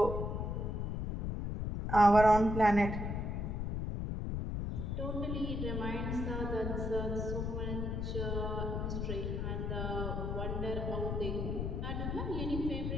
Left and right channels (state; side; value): noise; left; rumble, 2 dB below the sound